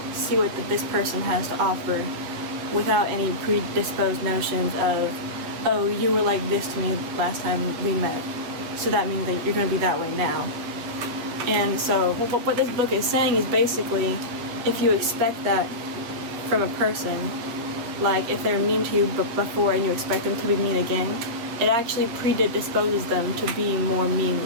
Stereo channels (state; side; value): late; left; 8.1 ms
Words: see what this person has to offer without any predisposed notions of, oh, you were like this to me last time we met, so that means that you're going to be that way now. And so what this book is saying is basically, if you expect that from a person, like if they're mean to you before and you expect them to be mean again, it actually predisposes them to be more mean